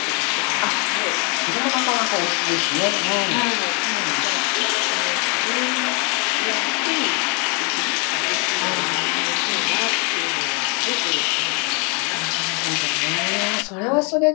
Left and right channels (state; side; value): quieter; right; 33.6 dB